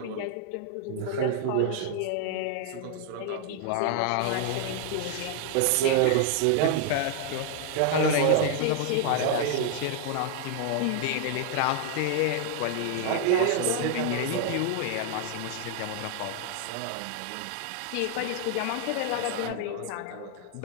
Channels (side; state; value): both; different; correlation 0.00